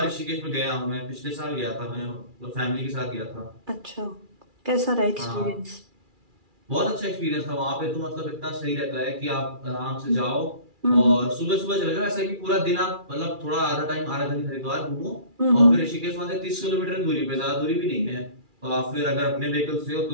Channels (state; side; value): late; left; 2.4 ms